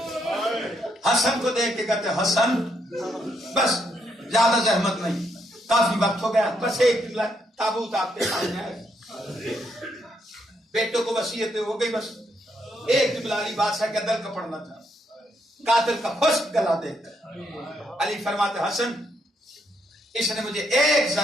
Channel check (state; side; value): normal; both; correlation 0.76